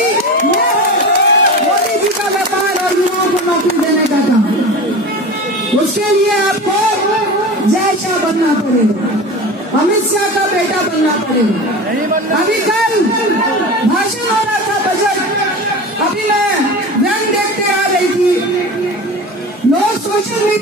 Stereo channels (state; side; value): normal; both; correlation 0.31